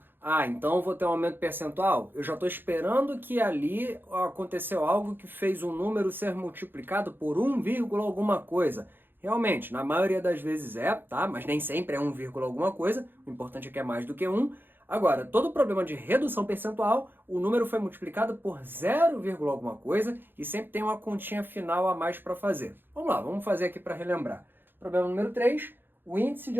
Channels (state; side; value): late; left; 0.098 ms